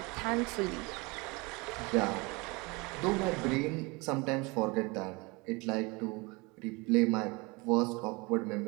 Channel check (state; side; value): quieter; left; 26.5 dB